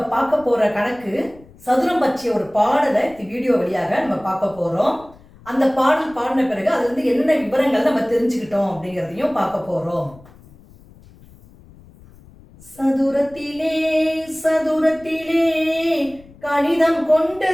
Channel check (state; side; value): noise; left; rumble, 24 dB below the sound